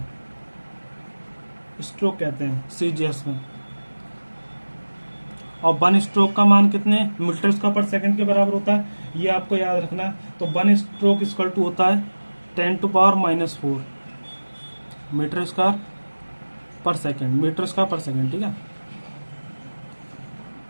स्ट्रोक कहते हैं सी जी एस में। और 1 स्ट्रोक का मान कितने मीटर स्क्वायर पर सेकंड के बराबर होता है, ये आपको याद रखना है। तो 1 स्ट्रोक इक्वल टू होता है 10⁻⁻⁴ मीटर स्क्वायर पर सेकंड, मीटर स्क्वायर पर सेकंड। ठीक है,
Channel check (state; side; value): inverted; both; correlation -1.00